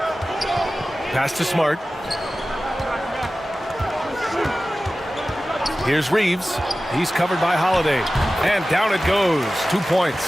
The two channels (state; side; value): normal; both; correlation 0.96